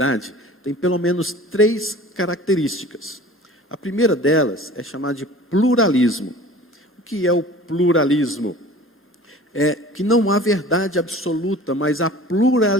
tem pelo menos 3 características. A primeira delas é chamada de pluralismo. O que é o pluralismo? É que não há verdade absoluta, mas há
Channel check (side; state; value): both; normal; correlation 0.43